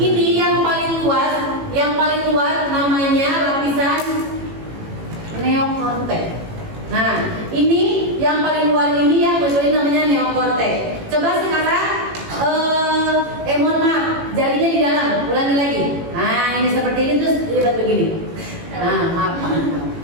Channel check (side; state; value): left; late; 18 ms